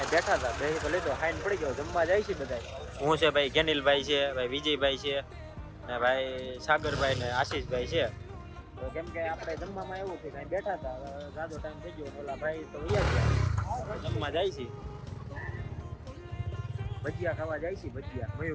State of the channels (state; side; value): identical; both; correlation 1.00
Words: બેઠા હતા બેસી તો લીધો ખાઈને પડી ગયો જમવા જાય છે બધા હું છે ભાઈ ગેનિલભાઈ છે ભાઈ વિજયભાઈ છે ને ભાઈ સાગરભાઈ ને આશીષભાઈ છે તો કેમ કે આપણે જમવામાં એવું છે કાંઈ બેઠા હતા જાદો ટાઈમ થઈ ગયો ઓલા ભાઈ તો ગયા જમવા જાય છે ભજીયા ખાવા જાય છે ભજીયા